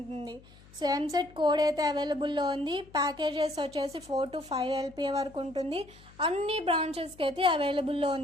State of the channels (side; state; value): left; noise; hum, 24 dB below the sound